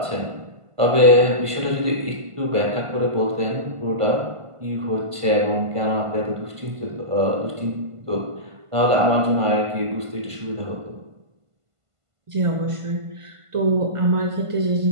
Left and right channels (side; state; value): left; late; 1.5 ms